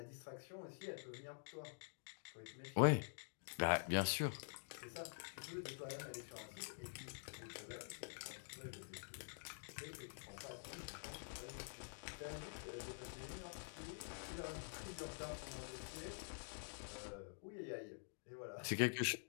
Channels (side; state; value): right; silent; digital silence